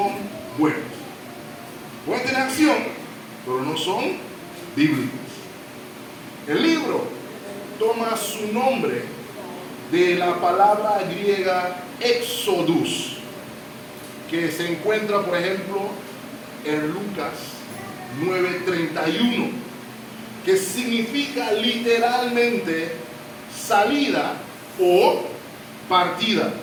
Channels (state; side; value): identical; both; correlation 1.00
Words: buenas. Pueden tener acción, pero no son bíblicas. El libro toma su nombre de la palabra griega Exodus, que se encuentra, por ejemplo, en Lucas 9:31, que significa literalmente salida o partida.